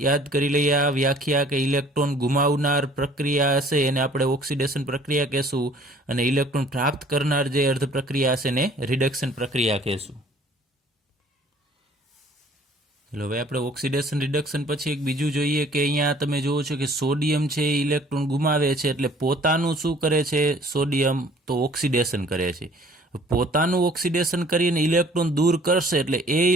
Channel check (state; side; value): normal; both; correlation 0.54